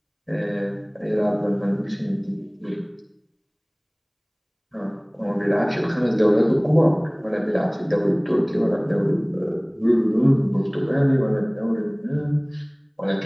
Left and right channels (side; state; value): both; identical; correlation 1.00